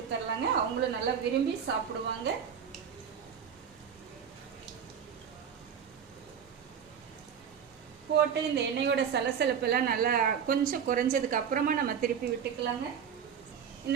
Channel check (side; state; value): left; quieter; 7.7 dB